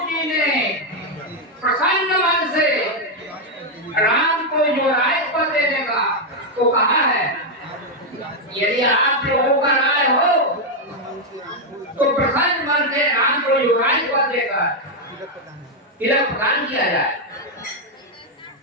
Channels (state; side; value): normal; both; correlation 0.01